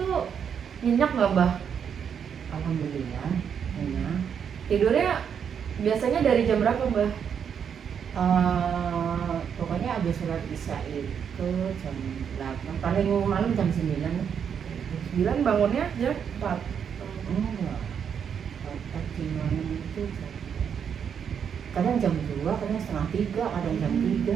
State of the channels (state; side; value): quieter; left; 7.6 dB